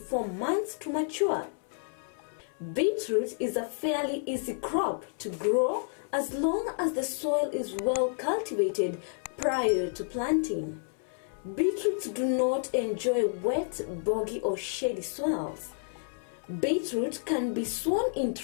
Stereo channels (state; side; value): silent; right; 58 dB below the other